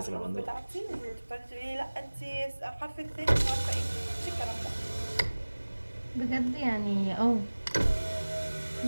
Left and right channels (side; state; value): both; inverted; correlation -1.00